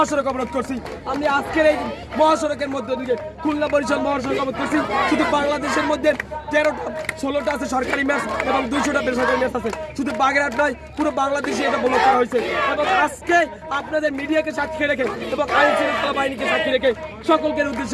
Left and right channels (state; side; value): identical; both; correlation 1.00